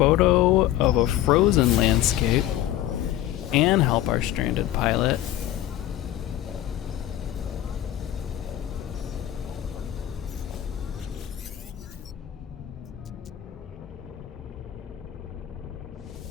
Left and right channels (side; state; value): right; quieter; 13.0 dB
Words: of a frozen landscape and help our stranded pilot.